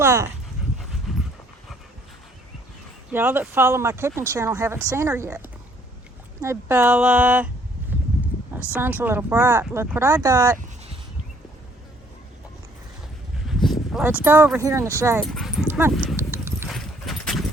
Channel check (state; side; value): normal; both; correlation 0.63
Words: Y'all that follow my cooking channel haven't seen her yet. Hey, Bella. My sun's a little bright. Look what I got. Let's go over here in the shade. Come on.